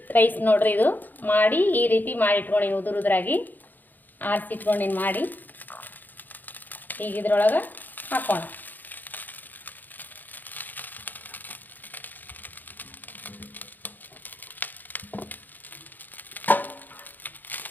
ರೈಸ್ ನೋಡ್ರಿ. ಇದು ಮಾಡಿ ಈ ರೀತಿ ಮಾಡಿಟ್ಕೊಂಡಿನಿ, ಉದುರಾಗಿ ಆರಿಸಿಟ್ಕೊಂಡಿನಿ ಮಾಡಿ. ಈಗ ಇದ್ರೊಳಗೆ ಹಾಕೋಣ.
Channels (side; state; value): right; late; 0.087 ms